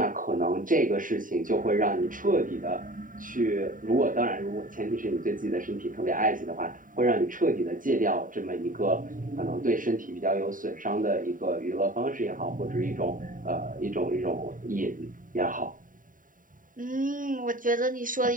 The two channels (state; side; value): late; left; 0.39 ms